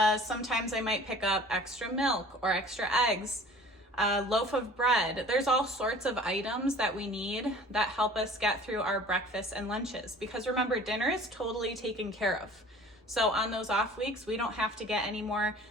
Sometimes I might pick up extra milk or extra eggs, a loaf of bread. There's all sorts of items that we need that help us get through our breakfasts and lunches. Because remember, dinner is totally taken care of. So on those off weeks, we don't have to get any more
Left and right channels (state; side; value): normal; both; correlation 0.47